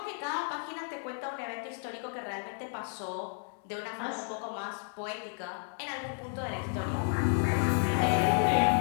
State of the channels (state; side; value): silent; right; 56 dB below the other